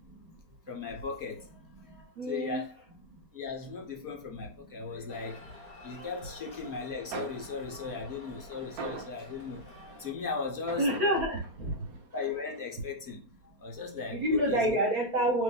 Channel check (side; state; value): left; late; 4.3 ms